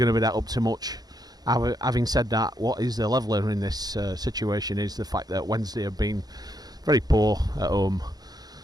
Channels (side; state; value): left; late; 0.19 ms